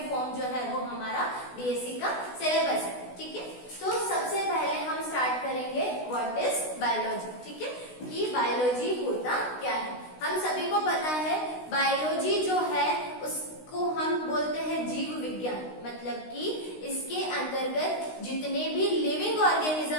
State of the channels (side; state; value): right; late; 16 ms